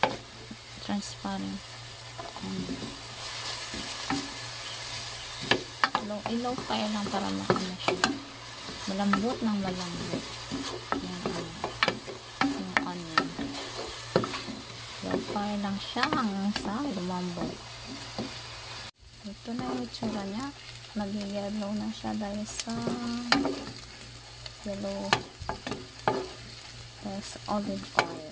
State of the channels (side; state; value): both; identical; correlation 1.00